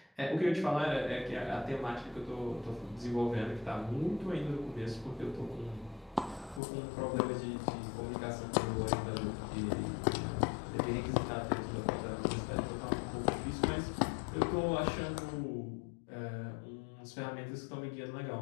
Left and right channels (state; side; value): drops out; right; at 6.6 s